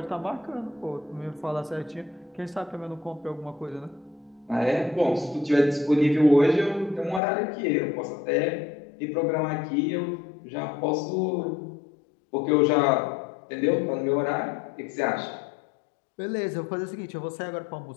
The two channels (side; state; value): right; drops out; at 7.2 s